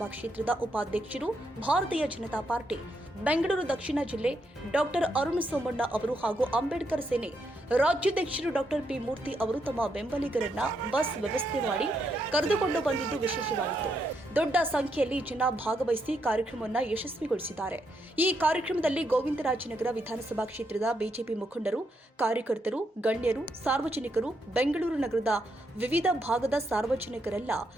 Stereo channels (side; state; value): both; normal; correlation 0.79